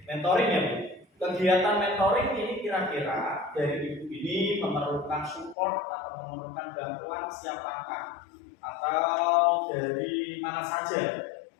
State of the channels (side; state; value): right; drops out; at 5.6 s